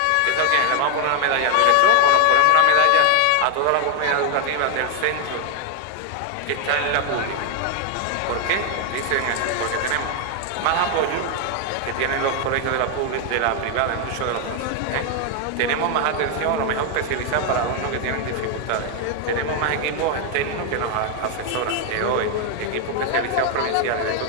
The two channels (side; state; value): both; different; correlation 0.01